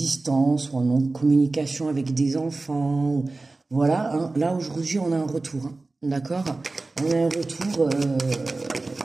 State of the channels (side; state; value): left; quieter; 3.4 dB